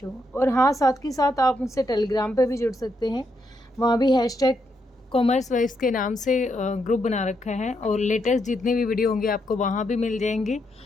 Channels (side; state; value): both; normal; correlation 0.79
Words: और हाँ, साथ के साथ आप मुझसे टेलीग्राम पे भी जुड़ सकते हैं, वहाँ भी #कॉमर्स वाइज के नाम से ग्रुप बना रखा है और लेटेस्ट जितने भी वीडियो होंगे आपको वहाँ भी मिल जाएंगे।